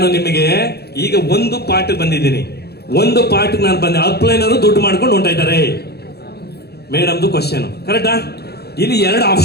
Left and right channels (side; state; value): right; late; 0.47 ms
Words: ನಿಮಗೆ ಈಗ ಒಂದು ಪಾಠ ಬಂದಿದ್ದೀನಿ. ಒಂದು ಪಾಠ ನಾನು ಬಂದೆ. ಅಪ್ಲೈನರು ದುಡ್ಡು ಮಾಡ್ಕೊಂಡು ಹೊಂಟ ಇದ್ದಾರೆ ಮೇಡಮ್ದು ಕ್ವಶನ್. ಕರೆಕ್ಟಾ? ಇಲ್ಲಿ 2